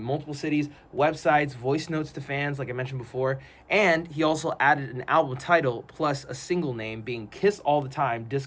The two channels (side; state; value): both; identical; correlation 1.00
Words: multiple cities, websites, voice notes to fans, like I mentioned before. And he also added an album title plus a single name, being Kiss All the Time,